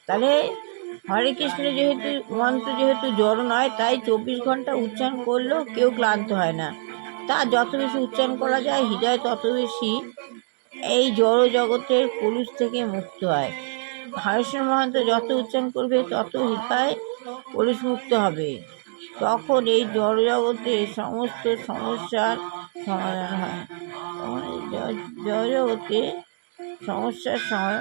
তাহলে হরে কৃষ্ণ যেহেতু মন্ত্র যেহেতু জড় নয়, তাই 24 ঘন্টা উচ্চারণ করলেও কেউ ক্লান্ত হয় না। তা যত বেশি উচ্চারণ করা যায়, হৃদয় তত বেশি এই জড় জগতের কলুষ থেকে মুক্ত হয়। হরেকৃষ্ণ মহামন্ত্র যত উচ্চারণ করবে, তত হৃদয় কলুষ মুক্ত হবে। তখন এই জড় জগতের সমস্ত সমস্যার সমাধান হয়। তখন এই জড় জগতে সমস্যার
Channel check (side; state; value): left; silent; 63 dB below the other